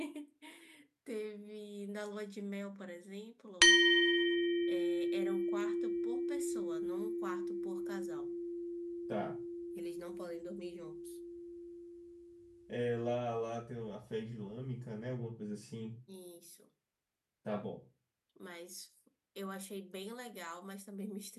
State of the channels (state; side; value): identical; both; correlation 1.00